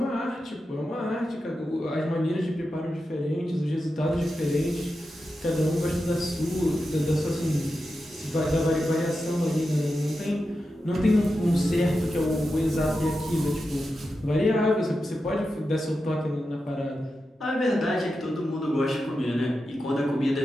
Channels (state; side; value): normal; both; correlation 0.90